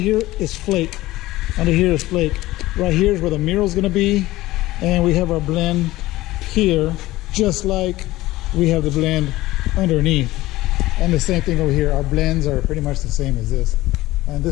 is flake. Under here is flake. Right here is where the mural's gonna be. And we have our blend here, just like we have the blend underneath. And the same thing over here. Our blends are pretty much the same as this. And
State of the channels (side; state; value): right; quieter; 17.6 dB